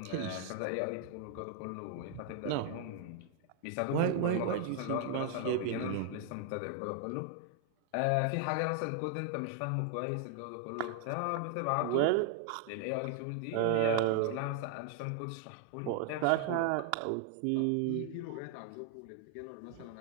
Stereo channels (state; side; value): different; both; correlation 0.00